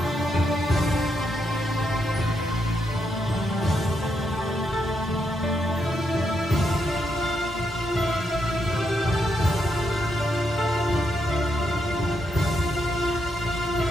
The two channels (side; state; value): both; normal; correlation 0.80